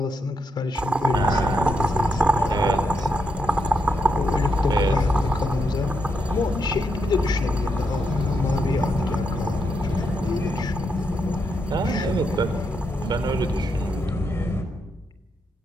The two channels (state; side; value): normal; both; correlation 0.81